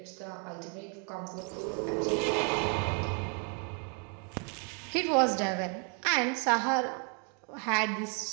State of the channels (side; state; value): left; quieter; 38.6 dB